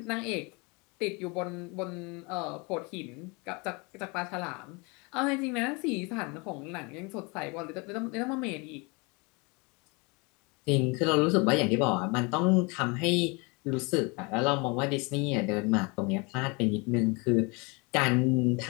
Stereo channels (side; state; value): right; quieter; 29.1 dB